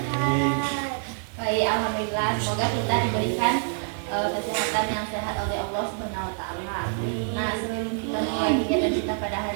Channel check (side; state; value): left; silent; 61 dB below the other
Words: Baik, alhamdulillah. Semoga kita diberikan kesehatan yang sehat oleh Allah Subhanahu wa taala. Nah, sebelum kita mulai kegiatan kita pada